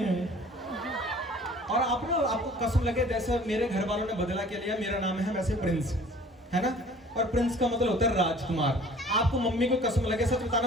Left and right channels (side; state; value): both; normal; correlation 0.50